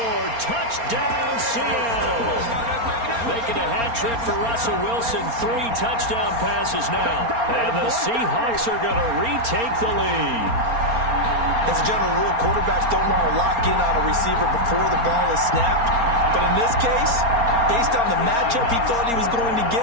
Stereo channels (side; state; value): left; late; 4.3 ms